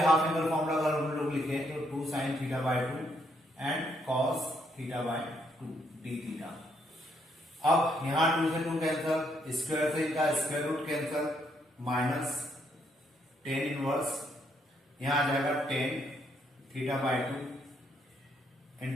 हाफ एंगल फॉर्मूला अगर हम लोग लिखे तो 2 sine theta by 2 and cos theta by 2 d theta. अब यहां 2 से 2 कैंसल, स्क्वायर से इनका square root cancel, minus tan inverse यहां आ जाएगा 10 थीटा बाय 2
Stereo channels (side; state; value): both; normal; correlation 0.73